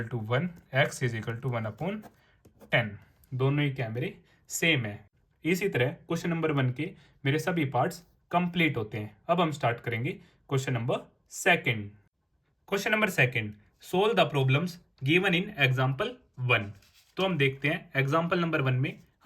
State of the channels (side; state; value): both; identical; correlation 1.00